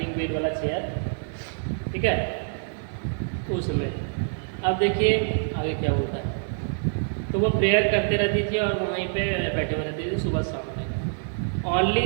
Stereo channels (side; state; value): left; silent; 61 dB below the other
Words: व्हील वाला चेयर, ठीक है, उसमें। अब देखिए आगे क्या होता है। तो वो प्रेयर करते रहती थी और वहीं पे बैठे हुए रहती थी सुबह शाम में। ओनली